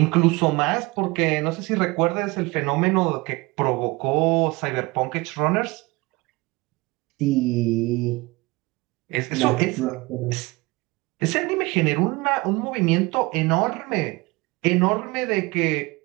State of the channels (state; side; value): quieter; left; 23.6 dB